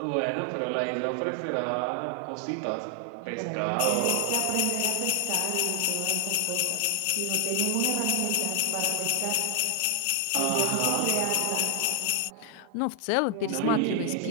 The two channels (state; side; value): different; both; correlation 0.00